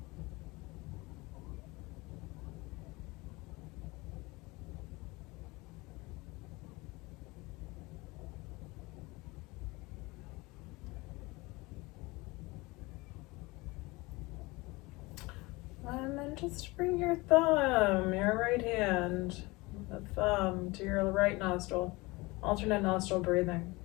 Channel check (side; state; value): right; quieter; 23.3 dB